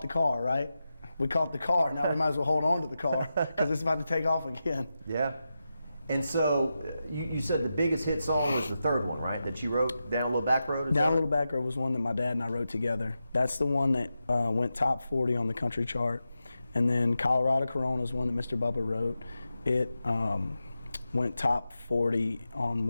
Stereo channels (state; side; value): inverted; both; correlation -0.90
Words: the car, right? We caught the car, now we might as well hold on to the car because it's about to take off again. Yeah. And so you said the biggest hit song was the third one, right? That you wrote, Down a Little Back Road? Down a Little Back Road was one that my dad and I wrote together. That's the one that went top 40 on the country chart. And then Colorado Corona is one that Mr. Bubba wrote. It went top 40 on